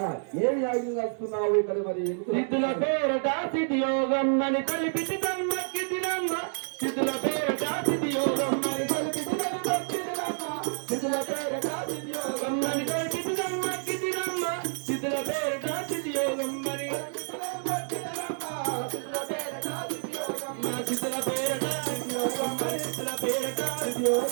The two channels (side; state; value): left; silent; digital silence